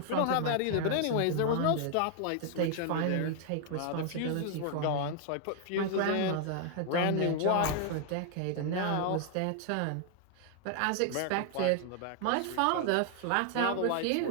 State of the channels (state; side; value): different; both; correlation 0.00